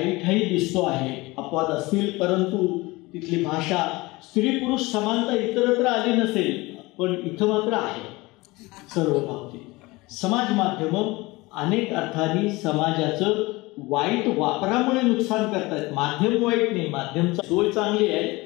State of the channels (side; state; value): right; quieter; 22.2 dB